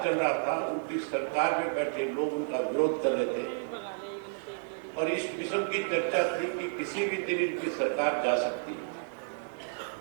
चल रहा था, उनकी सरकार में बैठे लोग उनका विरोध कर रहे थे और इस किस्म की चर्चा थी कि किसी भी दिन इनकी सरकार जा सकती है।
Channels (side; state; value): left; silent; 57 dB below the other